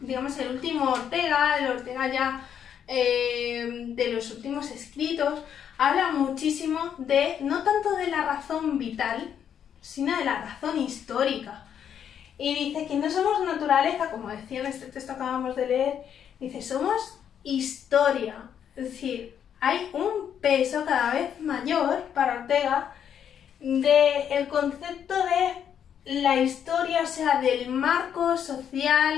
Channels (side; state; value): right; quieter; 8.7 dB